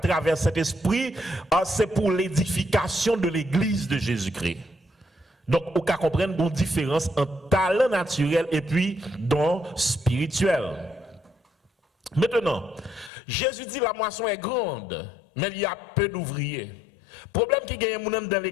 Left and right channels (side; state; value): right; drops out; at 13.1 s